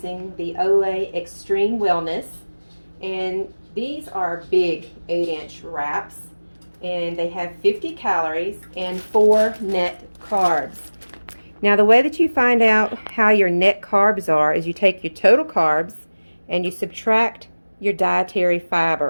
the Olay Extreme Wellness, and these are big 8-inch wraps, and they have 50 calories and 4 net carbs. Now the way that you find out how your net carbs are is you take your total carbs and you subtract your dietary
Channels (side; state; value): both; inverted; correlation -1.00